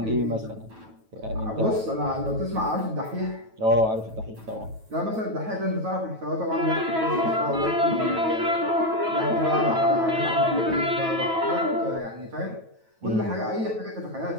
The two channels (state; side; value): late; left; 9.1 ms